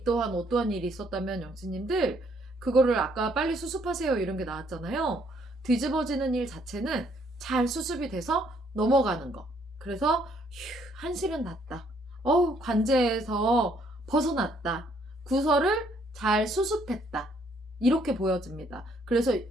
또한 어떠한 일이 있었다면 영치님들 그거를 아까 빨리 수습하세요 이런 게 나왔잖아요. 뒤집어지는 일 자체는 잘 수습이 돼서 넘어가는 거. 그래서 한시는 났다. 관제에서 벗어났다. 구설을 잘 수습했다. 이렇게 보여집니다. 그래서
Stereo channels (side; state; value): both; normal; correlation 0.67